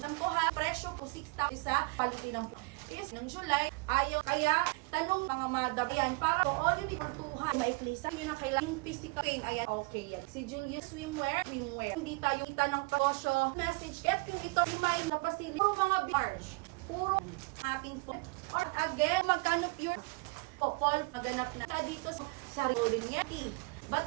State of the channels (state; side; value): quieter; left; 28.9 dB